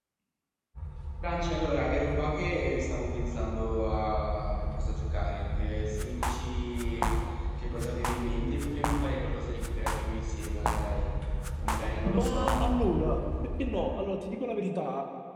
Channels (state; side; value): identical; both; correlation 1.00